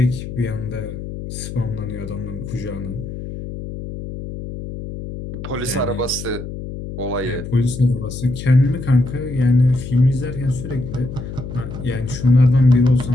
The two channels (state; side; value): noise; left; hum, 9 dB below the sound